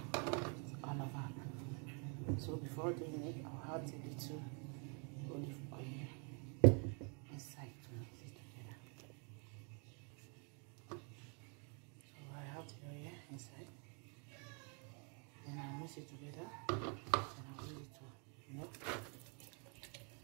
all over. So before doing it, I'll add a little olive oil inside to mix it together. So I have the oil inside. Then I'll mix it together and I'll use it to melt.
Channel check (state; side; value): quieter; left; 36.9 dB